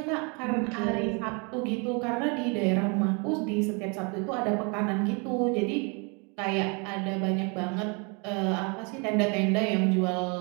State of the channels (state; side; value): quieter; left; 32.9 dB